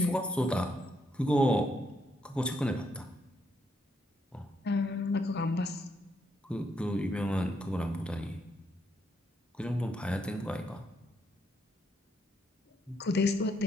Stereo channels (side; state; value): both; normal; correlation 0.76